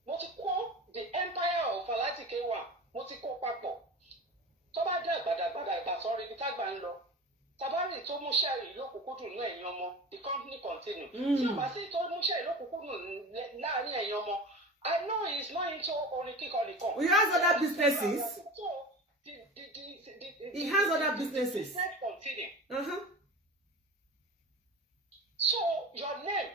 mo ti kó the empire of Alhaji K1 mo ti kó papọ̀ tó bá dé àgbàdàgbàdà sọ̀rọ̀ ibi tágbà ń lọ tabari tó mú sẹ́ẹ̀rì lókùnkúndùn náà ẹ̀yin ọmọ the company continue tí o bá sí tó mú sẹ́ẹ̀rì lókùnkúndùn láàrin ẹ̀yin ọmọ I know he is not into orin kíkọ nìkan. He has other businesses. He has other businesses. Continue. So your name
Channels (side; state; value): both; normal; correlation 0.32